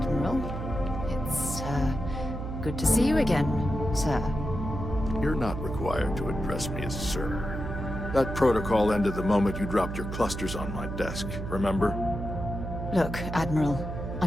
it's, good to see you again, sir. You're not required to address me as sir. That protocol ended the moment you dropped your clusters on my desk, remember? Look, Admiral,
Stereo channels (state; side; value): noise; right; hum, 6 dB below the sound